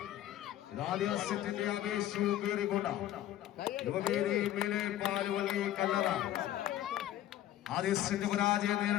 ആവേശവും കയറിക്കൊണ്ട യുവവേദി മേലെ പാലുവള്ളി കല്ലറ ആദ്യ സെറ്റ് പരാജയം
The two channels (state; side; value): quieter; right; 12.9 dB